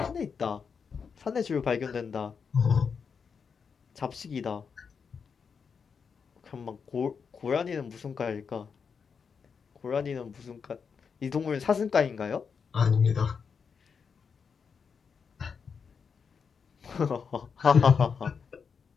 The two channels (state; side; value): quieter; right; 6.0 dB